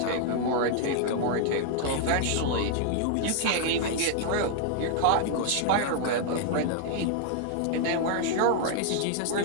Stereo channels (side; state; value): both; different; correlation 0.00